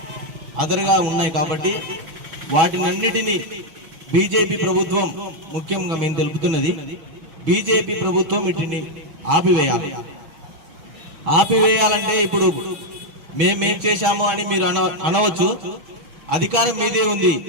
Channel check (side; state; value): left; late; 6.2 ms